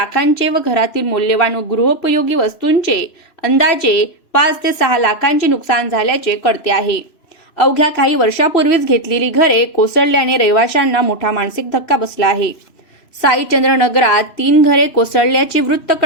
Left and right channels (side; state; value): right; late; 2.9 ms